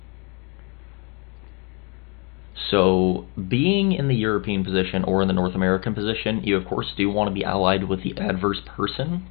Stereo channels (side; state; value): right; quieter; 33.3 dB